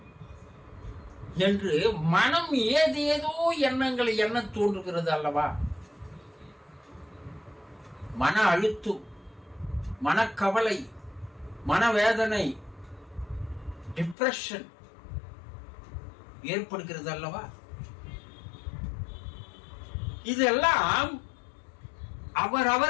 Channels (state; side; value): drops out; right; at 14.2 s